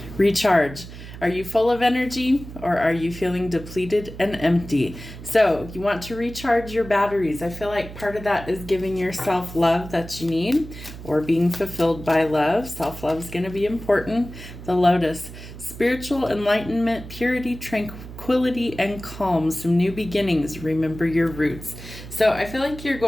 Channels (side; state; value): right; noise; hum, 13 dB below the sound